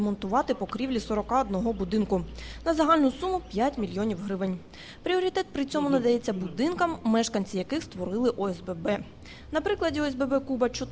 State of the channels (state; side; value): identical; both; correlation 1.00